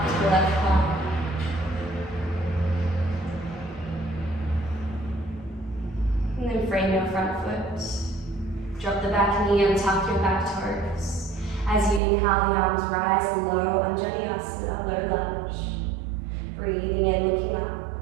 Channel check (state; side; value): drops out; left; at 12.0 s